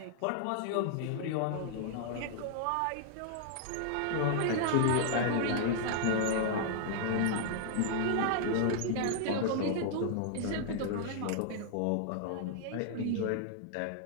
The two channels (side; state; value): both; different; correlation -0.01